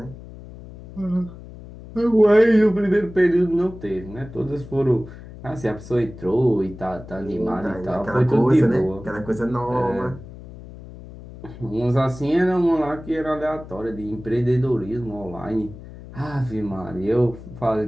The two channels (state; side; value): noise; left; hum, 16 dB below the sound